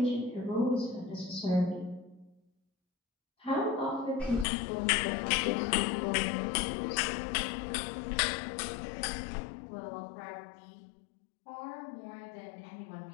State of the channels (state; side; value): drops out; right; at 4.5 s